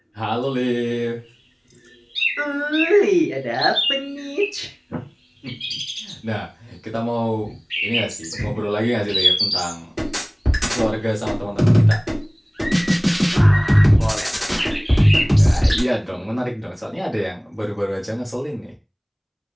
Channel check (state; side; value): identical; both; correlation 1.00